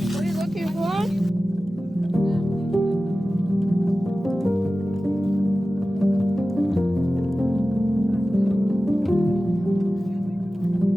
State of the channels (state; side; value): normal; both; correlation 0.95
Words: What are you looking for?